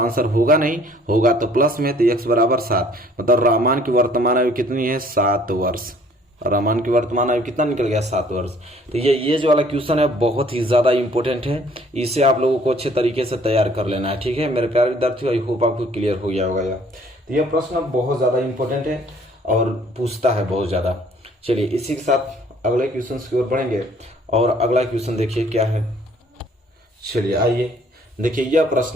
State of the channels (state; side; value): normal; both; correlation 0.57